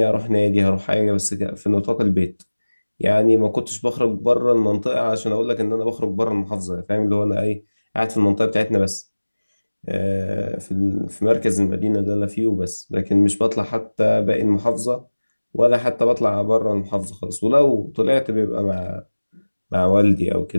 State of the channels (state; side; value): inverted; both; correlation -1.00